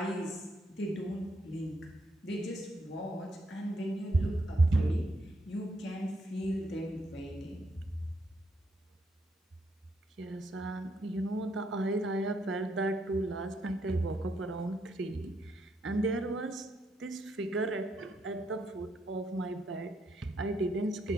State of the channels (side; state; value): both; normal; correlation 0.76